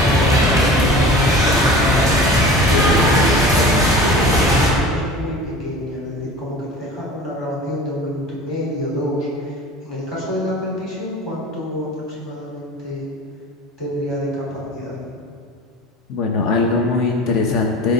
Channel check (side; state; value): both; normal; correlation 0.39